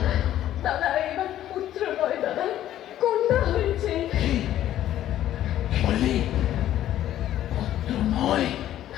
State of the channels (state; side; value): quieter; right; 12.4 dB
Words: দাদা এবার পুত্র নয় দাদা, কন্যা হয়েছে। বললি পুত্র নয়?